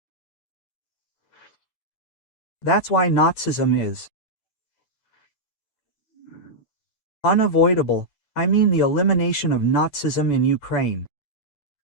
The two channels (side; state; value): right; late; 8.9 ms